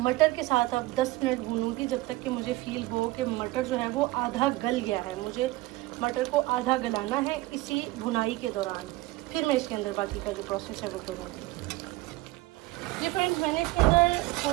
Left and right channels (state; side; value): quieter; left; 19.3 dB